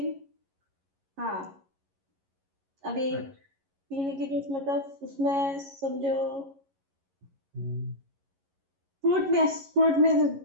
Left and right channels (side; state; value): left; late; 11 ms